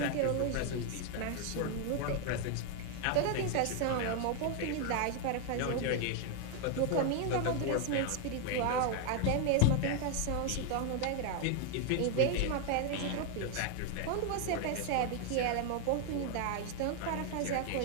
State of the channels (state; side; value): different; both; correlation 0.00